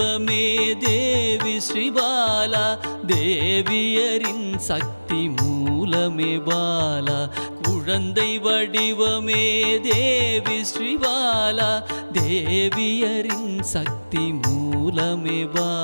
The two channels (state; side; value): inverted; both; correlation -1.00